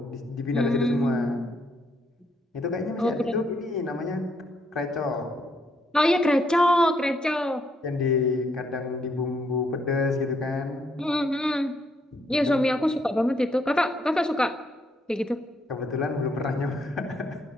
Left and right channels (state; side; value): normal; both; correlation 0.73